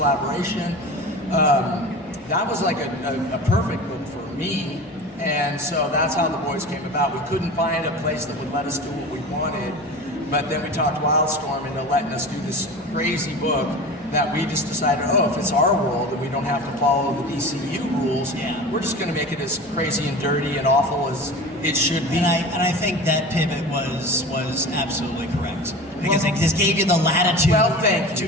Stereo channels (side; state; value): both; normal; correlation 0.33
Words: that was like a perfect book for me. And so that's how the boys came about. We couldn't find a place that would let us do what we wanted, but then we talked Wildstorm into letting us do this crazy book that we just decided, if it's our world and we don't have to follow the DCU rules, we're just going to make it as crazy and dirty and awful as it should be. And I think that pivot was absolutely correct because it just gave you the latitude to